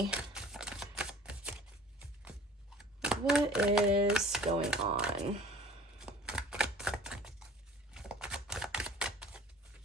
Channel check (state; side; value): normal; both; correlation 0.47